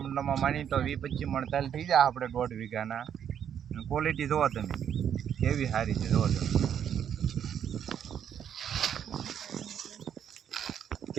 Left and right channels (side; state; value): left; quieter; 8.9 dB